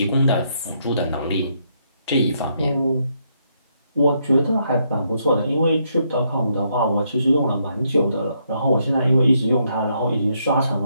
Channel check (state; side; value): inverted; both; correlation -0.75